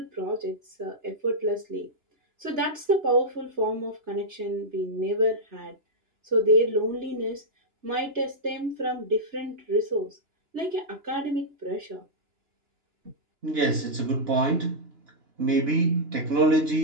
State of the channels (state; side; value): late; left; 2.9 ms